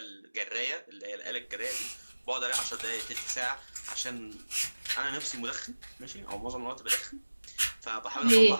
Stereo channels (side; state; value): both; inverted; correlation -1.00